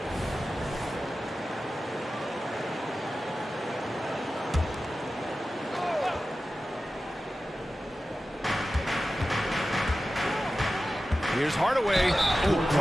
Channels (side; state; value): both; normal; correlation 0.94